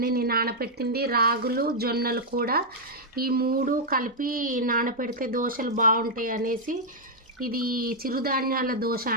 నేను నానబెట్టింది రాగులు జొన్నలు కూడా, ఈ మూడు కలిపి నానబెడితే దోశలు బాగుంటాయి అనేసి ఇది చిరుధాన్యాల దోశ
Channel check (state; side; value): normal; both; correlation -0.04